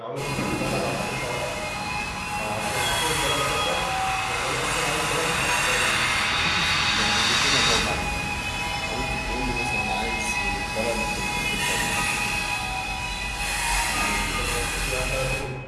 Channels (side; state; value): both; identical; correlation 1.00